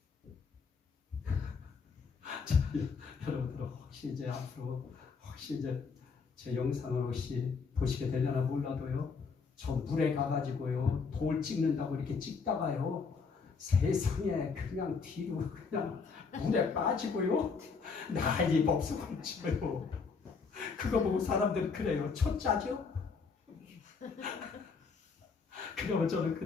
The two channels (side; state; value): right; quieter; 5.2 dB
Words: 자, 여러분들 혹시 이제 앞으로 혹시 이제 제 영상을 혹시 보시게 되려나 몰라도요, 저 물에 가가지고요 돌 찍는다고 이렇게 찍다가요 세상에 그냥 뒤로 그냥 물에 빠지고요 난리 법석을 치고요. 그거 보고 사람들은 그래요. 초짜죠? 그러면 저는